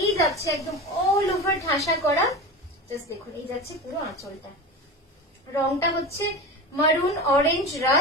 যাচ্ছে একদম অল ওভার ঠাসা করা। জাস্ট দেখুন, এই যাচ্ছে পুরো আঁচলটা। রংটা হচ্ছে মারুন, অরেঞ্জ,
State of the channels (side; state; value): both; normal; correlation 0.27